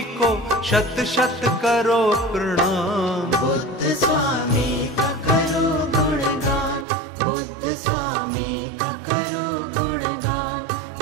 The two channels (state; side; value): drops out; left; at 6.9 s